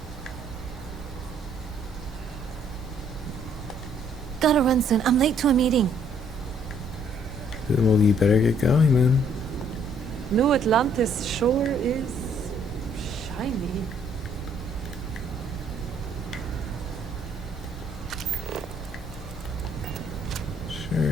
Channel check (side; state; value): both; normal; correlation 0.65